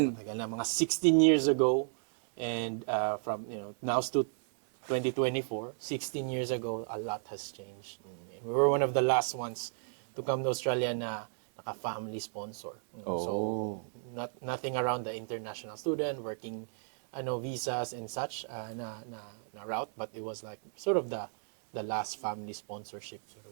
Matagal na, mga 16 years ago. And from, now to 2024, 16 years ago, a lot has changed. And we were one of the last ones to come to Australia na naka-family sponsor. So, nothing around the international student, working visas and such na route, but it was like sort of the last family sponsorship sort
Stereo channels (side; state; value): left; silent; digital silence